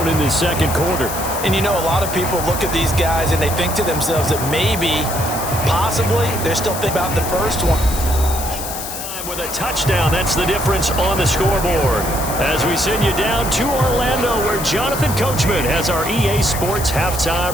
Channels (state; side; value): noise; left; hiss, 7 dB below the sound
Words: in the second quarter. And you know, a lot of people look at these guys and they think to themselves that maybe, possibly, they're still thinking about the first one. With a touchdown, that's the difference on the scoreboard. As we send you down to Orlando, where Jonathan Coachman has our EA Sports halftime